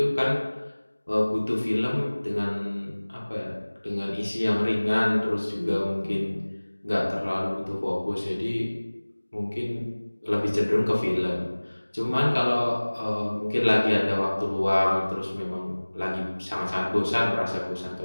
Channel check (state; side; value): inverted; both; correlation -1.00